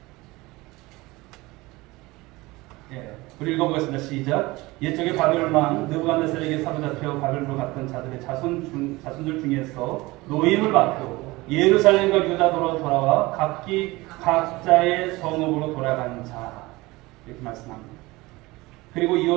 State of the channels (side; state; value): left; quieter; 21.3 dB